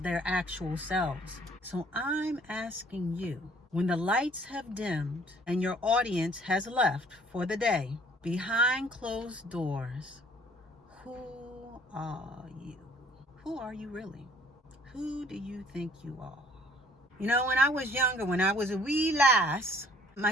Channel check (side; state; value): both; normal; correlation 0.57